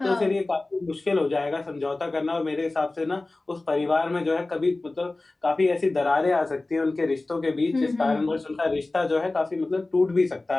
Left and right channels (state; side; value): quieter; right; 3.1 dB